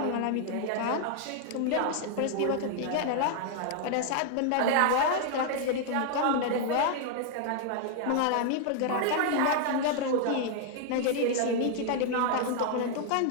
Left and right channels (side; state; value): both; different; correlation 0.00